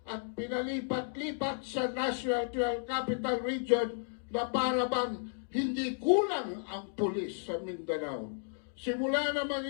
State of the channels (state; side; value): silent; right; digital silence